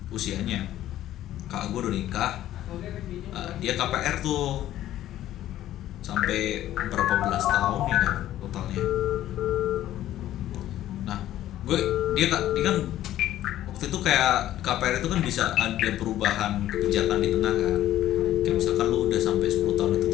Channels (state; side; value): quieter; right; 13.2 dB